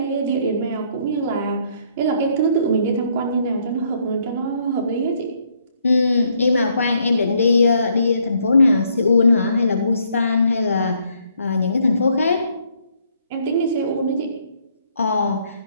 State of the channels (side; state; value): both; inverted; correlation -0.69